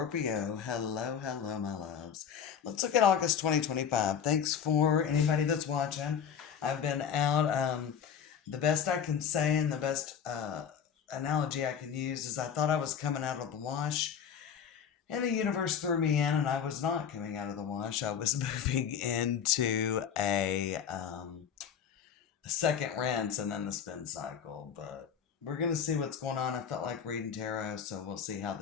Hello, hello, my loves. Let's look at August 2025. Thanks for anybody that's watching. I've been out. The best I can say and the best analogy I can use is I thought I was coming out of the wash, and the universe threw me in, and I was not coming out of the wash. I was moving into a second rinse and then the spin cycle. But we're going to see what's going on. I felt like reading tarot, so we'll see how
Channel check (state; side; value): quieter; right; 7.7 dB